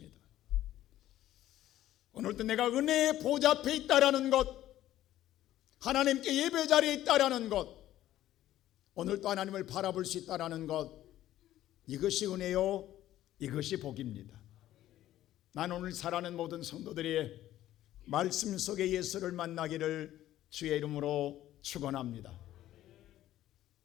오늘도 내가 은혜의 보좌 앞에 있다라는 것, 하나님께 예배 자리에 있다라는 것, 오늘도 하나님을 바라볼 수 있다라는 것, 이것이 은혜요, 이것이 복입니다. 나는 오늘 살아가는 모든 성도들이 말씀 속에 예수를 만나기를 주의 이름으로 축원합니다.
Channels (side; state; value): right; quieter; 13.5 dB